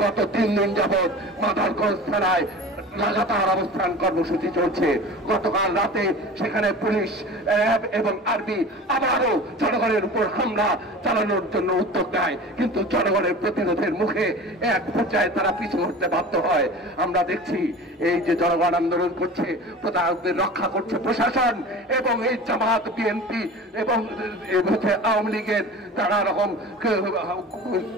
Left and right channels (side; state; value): both; normal; correlation 0.37